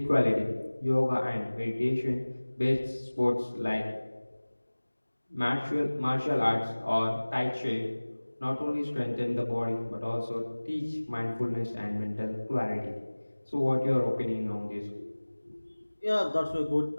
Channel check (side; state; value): both; inverted; correlation -1.00